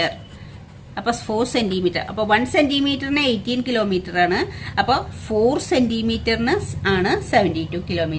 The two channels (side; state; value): both; identical; correlation 1.00